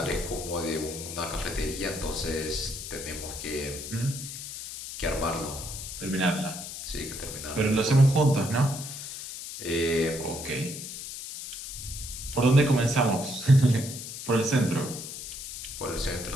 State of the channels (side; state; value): left; noise; hiss, 9 dB below the sound